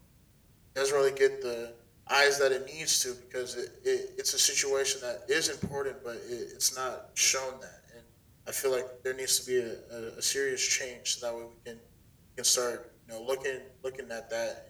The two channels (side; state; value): both; identical; correlation 1.00